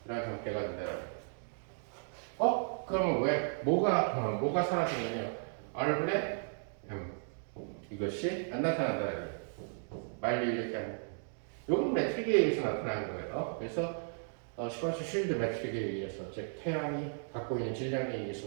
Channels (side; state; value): left; silent; digital silence